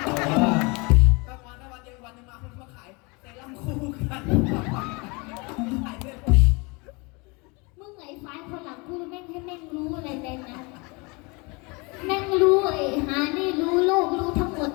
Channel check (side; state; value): right; quieter; 28.4 dB